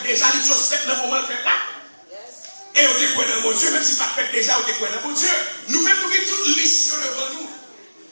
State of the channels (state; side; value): inverted; both; correlation -1.00